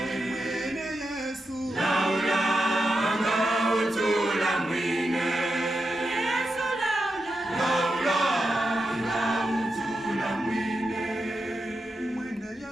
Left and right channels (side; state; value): both; normal; correlation 0.88